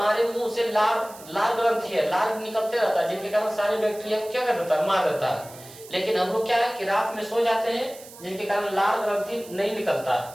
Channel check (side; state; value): right; noise; hiss, 19 dB below the sound